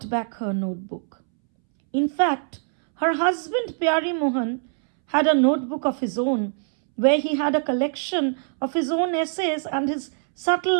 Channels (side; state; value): left; silent; 63 dB below the other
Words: back her notebook. In fact, her husband Pyari Mohan had a notebook of his own where he had a collection of his own essays and his